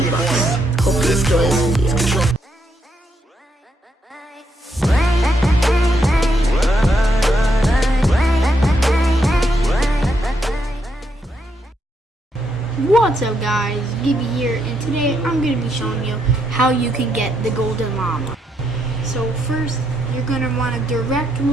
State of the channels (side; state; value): both; normal; correlation 0.78